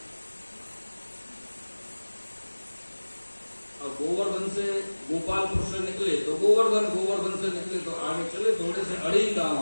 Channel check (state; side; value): inverted; both; correlation -1.00